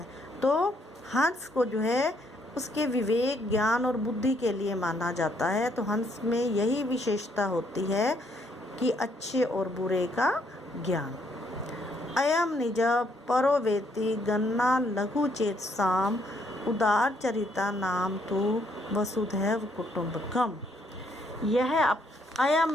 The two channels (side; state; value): both; normal; correlation 0.70